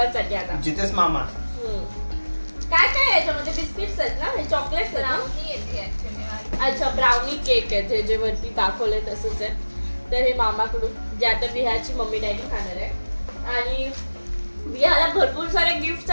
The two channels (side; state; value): both; inverted; correlation -1.00